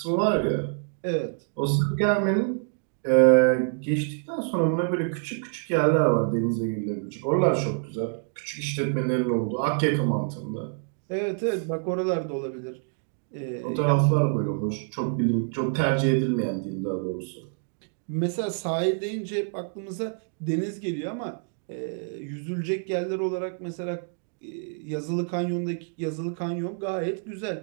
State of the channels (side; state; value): left; silent; 60 dB below the other